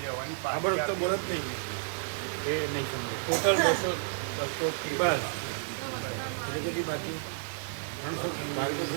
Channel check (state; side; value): silent; left; 57 dB below the other